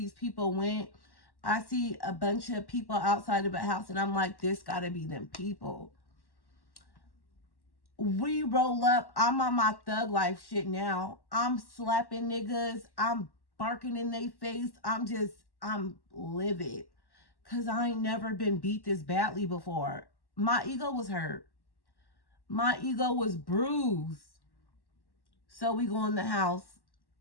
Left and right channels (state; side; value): late; right; 1.1 ms